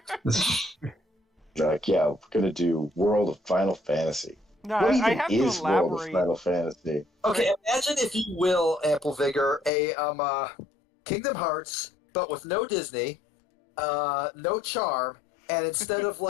like yeah, we're gonna do World of Final Fantasy. No, What I even have to is World of elaborate. Final Fantasy? Okay, imagine if you will, Ample Vigor, a Kingdom Hearts, but with no Disney, no charm, and instead of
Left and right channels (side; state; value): right; drops out; at 9.7 s